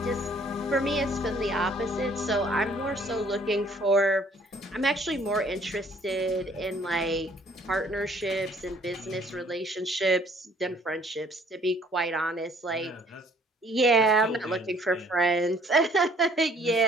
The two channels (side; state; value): both; normal; correlation 0.59